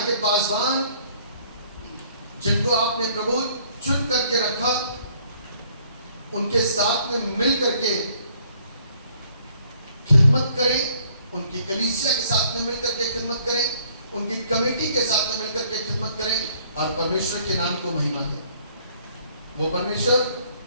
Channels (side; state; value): both; inverted; correlation -0.62